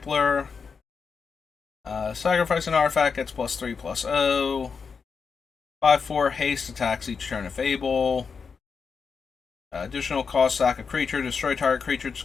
Sacrifice an artifact, gets +3/+0. 5/4 haste, attacks each turn if able. Additional cost, sack a creature, destroy target creature's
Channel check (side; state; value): right; quieter; 5.6 dB